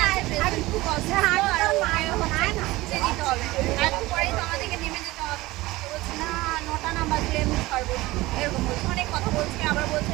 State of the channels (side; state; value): left; quieter; 19.4 dB